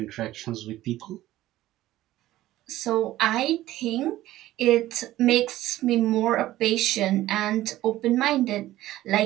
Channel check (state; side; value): quieter; left; 15.2 dB